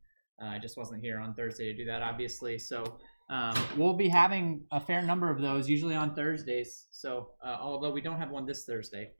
I just wasn't here on Thursday to do that, obviously. So we'll be having a fair number of those, usually on Thursdays. So although we don't have one this Thursday,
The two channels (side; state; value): both; inverted; correlation -1.00